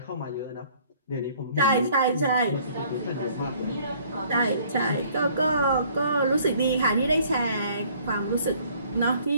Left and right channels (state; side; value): inverted; both; correlation -0.58